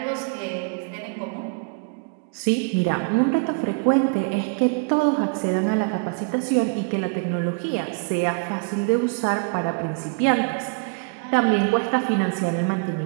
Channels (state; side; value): quieter; left; 37.0 dB